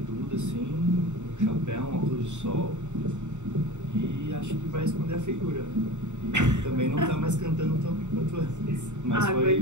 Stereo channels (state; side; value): late; left; 0.84 ms